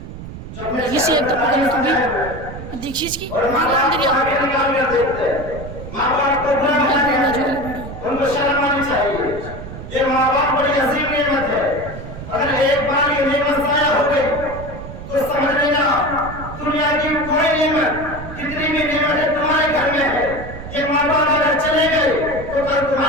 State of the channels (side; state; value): right; noise; rumble, 11 dB below the sound